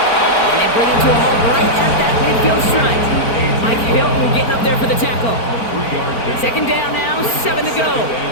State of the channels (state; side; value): late; right; 4.4 ms